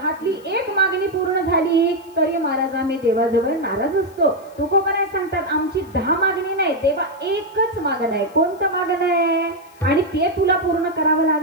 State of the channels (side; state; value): left; noise; hiss, 28 dB below the sound